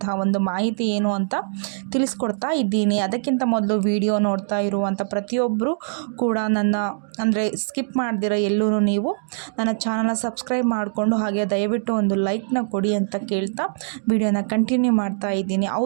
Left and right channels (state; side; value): silent; left; digital silence